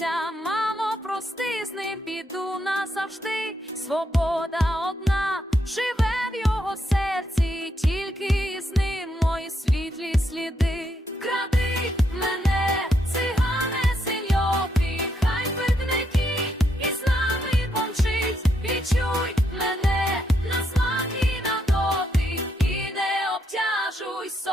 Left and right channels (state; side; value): normal; both; correlation 0.78